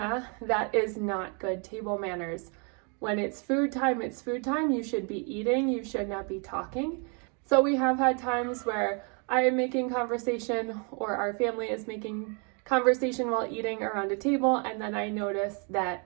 that is not good table manners. When it's food time, it's food time. You should be eating, you should not be talking. So we have had times where I am making conversation or our family is making conversation while eating around a table, and then I notice that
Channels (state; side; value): quieter; left; 37.0 dB